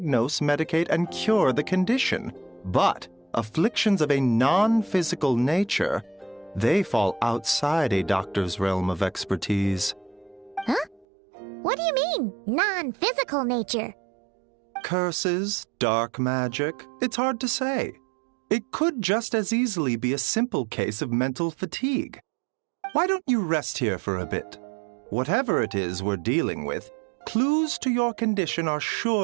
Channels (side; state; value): left; drops out; at 11.1 s